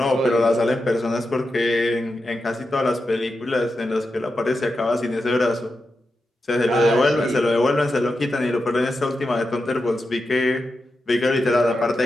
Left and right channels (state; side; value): normal; both; correlation 0.89